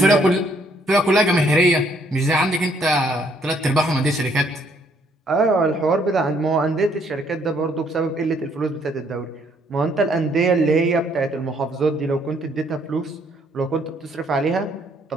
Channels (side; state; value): both; normal; correlation 0.67